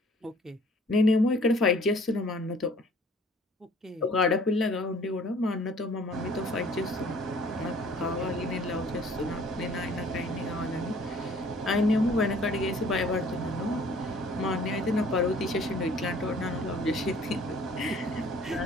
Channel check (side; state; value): both; normal; correlation 0.55